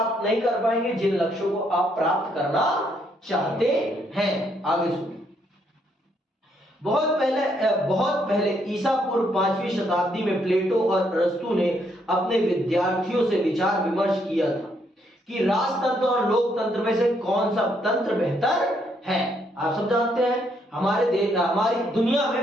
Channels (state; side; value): normal; both; correlation 0.73